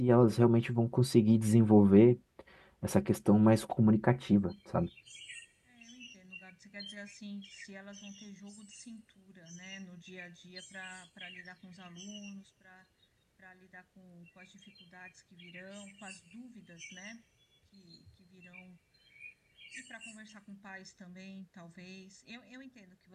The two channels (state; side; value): identical; both; correlation 1.00